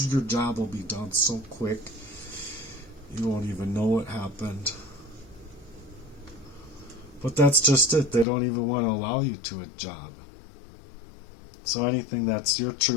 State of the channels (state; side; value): drops out; right; at 8.2 s